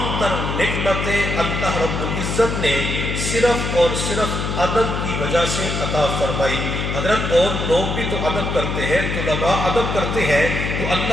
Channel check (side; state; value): left; noise; hum, 2 dB below the sound